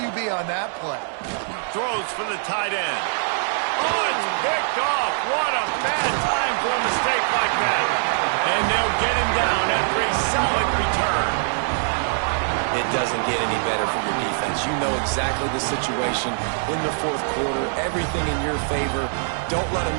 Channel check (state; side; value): silent; left; 59 dB below the other